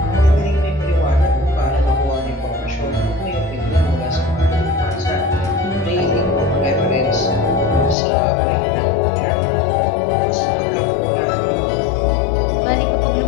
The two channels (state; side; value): drops out; right; at 8.0 s